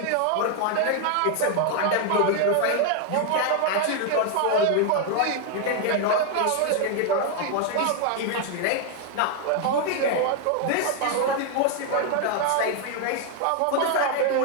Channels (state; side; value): different; both; correlation 0.00